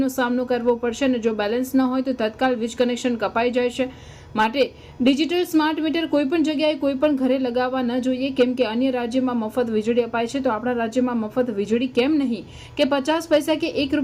સામનો કરવો પડશે અને જો બેલેન્સ ન હોય તો તત્કાલ વીજ કનેક્શન કપાઈ જાય છે। માટે ડિજિટલ સ્માર્ટ મીટર કોઈ પણ જગ્યાએ કોઈ પણ ઘરે લગાવવા ન જોઈએ, કેમ કે અન્ય રાજ્યમાં મફત વીજળી અપાય છે તો આપણા રાજ્યમાં મફત વીજળી કેમ નહીં, કે 50 પૈસા કે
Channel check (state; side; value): identical; both; correlation 1.00